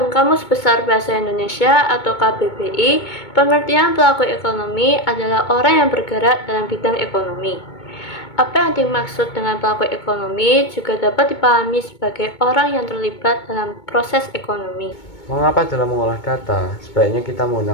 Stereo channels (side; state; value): right; late; 2.2 ms